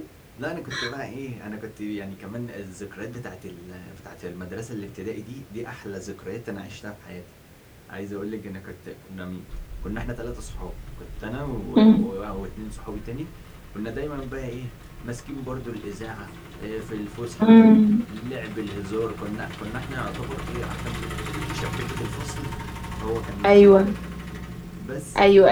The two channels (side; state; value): both; identical; correlation 1.00